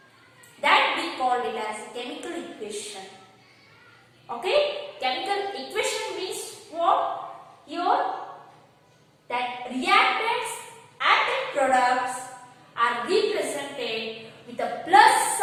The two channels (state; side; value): identical; both; correlation 1.00